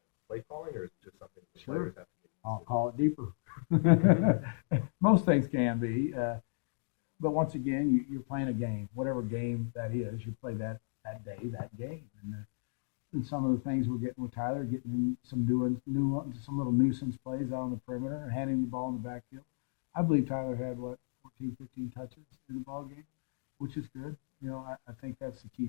play calling, or is it just something that Sure. players have to get used I'll to? call it deeper. Most things can be, but once again, you're playing a game. Whatever game that is, you play that day, that game. And some of the things we're getting with Tyler, getting him some some little nuisance plays out on the perimeter, and handing the ball in the backfield. I believe Tyler had 14, 15 touches in the ball game, which is good. I think that's the key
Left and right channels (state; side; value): silent; right; digital silence